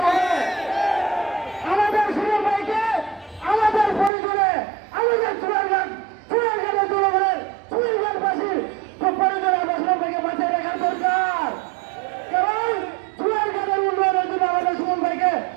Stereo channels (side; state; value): left; drops out; at 4.1 s